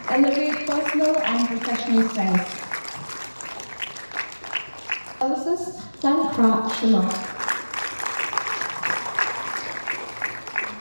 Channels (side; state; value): both; inverted; correlation -1.00